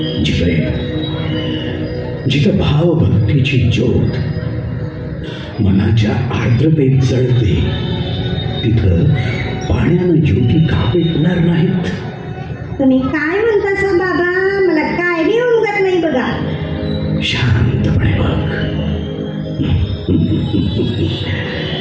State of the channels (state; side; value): identical; both; correlation 1.00